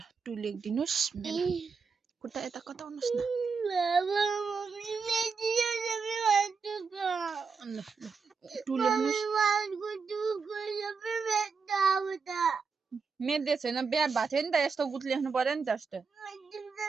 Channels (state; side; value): quieter; left; 5.2 dB